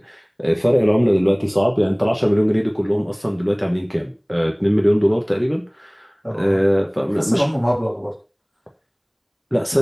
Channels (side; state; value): both; identical; correlation 1.00